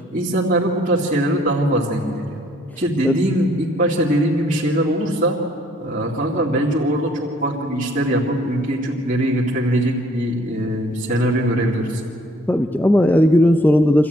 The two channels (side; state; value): both; normal; correlation 0.62